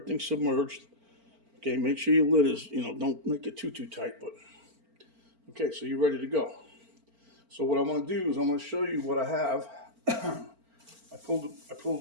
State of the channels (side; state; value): left; late; 4.4 ms